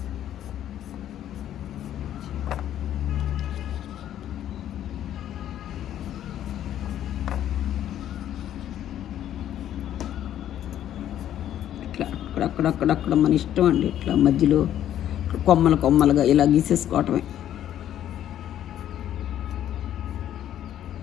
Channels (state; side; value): quieter; right; 11.3 dB